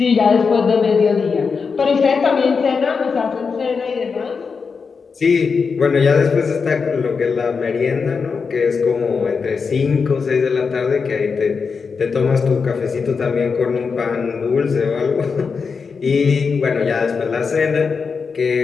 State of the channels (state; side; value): quieter; right; 5.3 dB